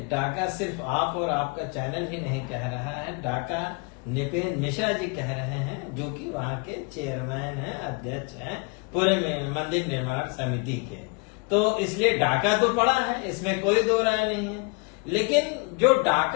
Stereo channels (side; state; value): right; quieter; 31.4 dB